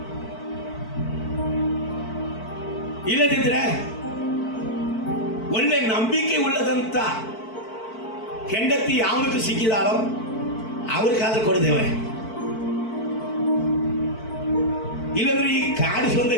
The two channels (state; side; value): late; right; 4.5 ms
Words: ಇಲ್ಲದಿದ್ರೆ ಒಳ್ಳೆ ನಂಬಿಕೆ ಉಳ್ಳದಂತ ಹೆಂಡತಿ ಯಾವನಿಗೆ ಸಿಕ್ಕಿದಾಳೋ ಅವ್ರಿಗಾದ್ರೂ ಕೊಡಿದೇವೆ, ಇಲ್ಲಂದ್ರೆ ಈ ಕಾಡಿಸುವಂತ